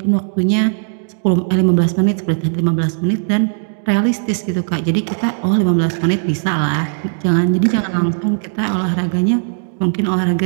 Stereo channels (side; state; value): left; silent; digital silence